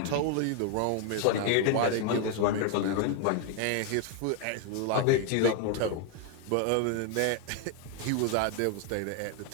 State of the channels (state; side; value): different; both; correlation 0.01